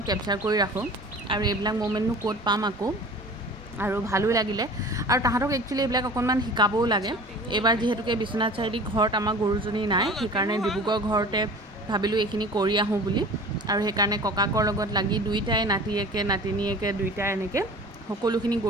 কেপচাৰ কৰি ৰাখোঁ, আৰু এইবিলাক মোমেণ্টনো ক'ত পাম আকৌ, আৰু ভালো লাগিলে। আৰু তাহাঁতক একচুৱেলি এইবিলাক অকণমান শিকাবও লাগে। এইবাৰ যিহেতুকে বিশ্বনাথ চাৰিআলি ঘৰত আমাৰ গৰুজনী নাই, সেইকাৰণে ডিব্ৰুগড় ঘৰতে ভাবিলোঁ এইখিনি কৰি আহোঁ বুলি। আৰু সেইকাৰণে ককাকৰ লগত লাগি দুইটাই নাতিয়েকে নাতিনীয়েকে দুইটাই এনেকৈ সকলোখিনি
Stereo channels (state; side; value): normal; both; correlation 0.41